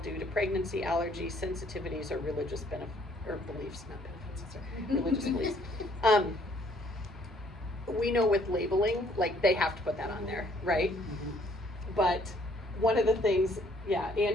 due to pregnancy, allergy, sensitivities, or religious beliefs, not benefits, sorry, religious beliefs. We know with labeling, like they have to put that on there, right? But one of the things, yeah,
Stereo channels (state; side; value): normal; both; correlation 0.63